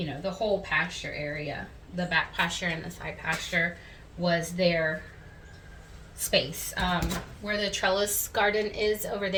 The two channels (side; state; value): both; identical; correlation 1.00